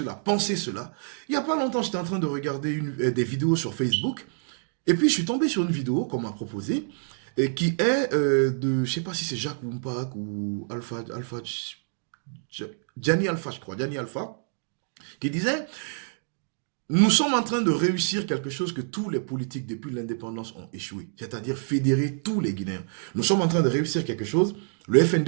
à penser cela, il n'y a pas longtemps j'étais en train de regarder des vidéos sur Facebook et puis je suis tombé sur une vidéo qu'on m'a proposée et qui est de, je sais pas si c'est Jacques Wumpak ou Gianni Alpha, je crois, Gianni Alpha, qui disait, nous sommes en train de réussir quelque chose que tous les politiques depuis l'indépendance ont échoué, c'est-à-dire fédérer tous les Guinéens. Nous sommes en train de réussir quelque chose, le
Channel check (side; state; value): left; silent; digital silence